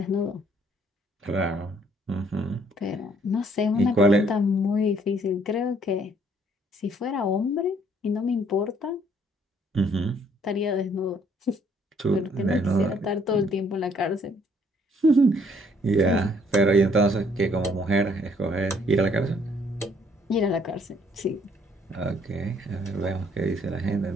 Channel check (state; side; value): normal; both; correlation 0.64